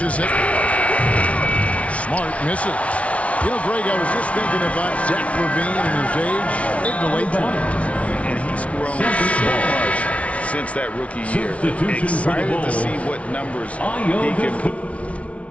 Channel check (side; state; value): right; late; 0.064 ms